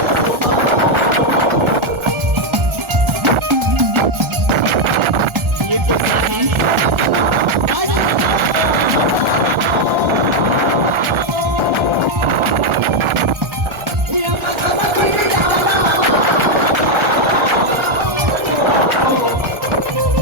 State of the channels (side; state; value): left; late; 1.4 ms